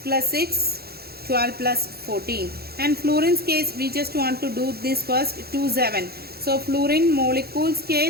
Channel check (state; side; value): late; left; 0.46 ms